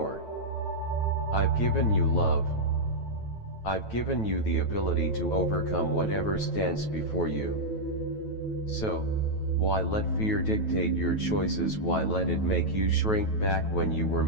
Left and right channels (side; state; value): right; late; 9.2 ms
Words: I've given you love. I've given you the ability to overcome whatever stands before you. So, why let fear dictate your choices? Why let it make you shrink back when you were